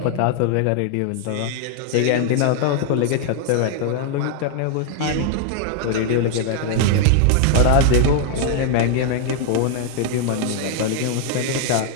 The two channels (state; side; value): different; both; correlation 0.00